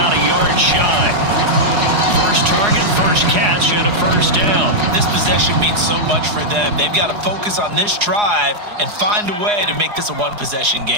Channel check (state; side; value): late; left; 4.8 ms